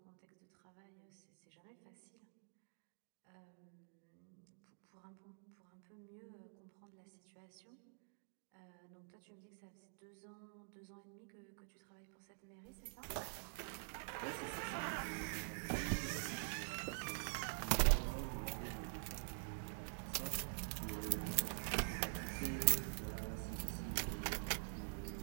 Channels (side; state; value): left; silent; digital silence